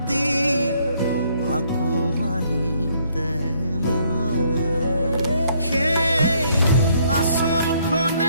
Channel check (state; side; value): inverted; both; correlation -0.67